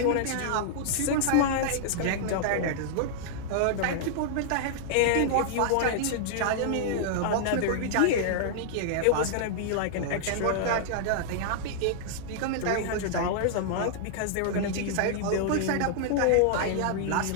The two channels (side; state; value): both; different; correlation -0.01